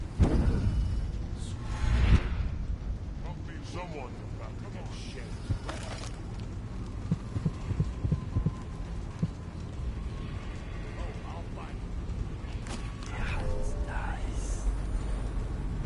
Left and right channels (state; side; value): identical; both; correlation 1.00